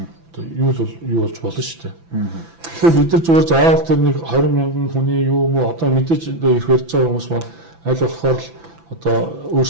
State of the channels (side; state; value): left; late; 6.0 ms